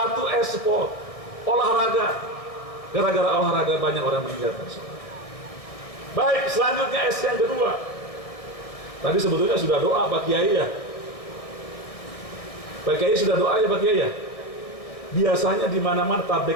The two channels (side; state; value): right; late; 1.6 ms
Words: e-sport, olahraga. Gara-gara olahraga banyak orang meninggalkan sholat. Baik, selanjutnya S yang kedua. Tadi sebetulnya sudah doa Pak Kiai ya. Pak Kiai sudah doa ya Pak Kiai ya. Biasanya di mana-mana